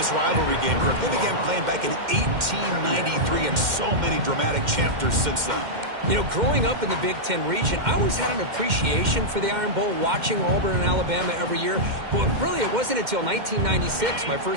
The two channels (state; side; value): late; left; 2.1 ms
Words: rivalry game. They began playing back in 1893 and so many dramatic chapters since then. You know, growing up in the Big Ten region, I always had an appreciation for the Iron Bowl, watching Auburn and Alabama every year. But really, it wasn't until 1996, my